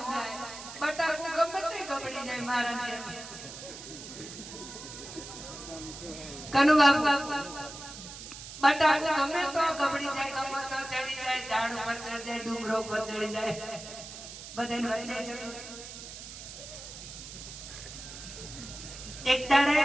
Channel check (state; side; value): noise; right; hiss, 12 dB below the sound